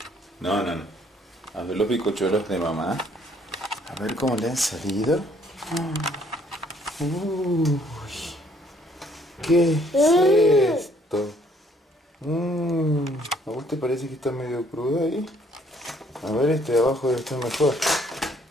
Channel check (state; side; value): normal; both; correlation 0.63